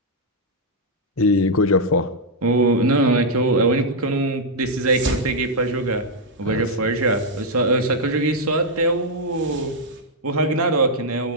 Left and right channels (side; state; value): both; normal; correlation -0.03